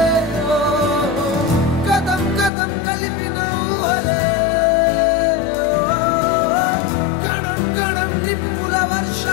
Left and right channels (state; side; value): drops out; right; at 2.5 s